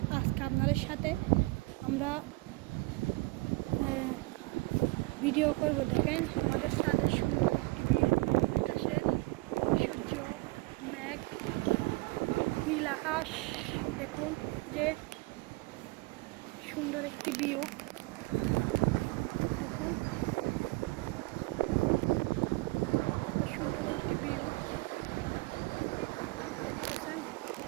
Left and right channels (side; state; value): left; quieter; 24.0 dB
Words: আজকে আপনাদের সাথে আমরা ভিডিও করবো। দেখেন আমাদের ছাদের আকাশের সূর্য, মেঘ, নীল আকাশ, দেখুন যে সুন্দর একটি ভিউ। দেখুন সুন্দর একটি ভিউ দেখতেছেন।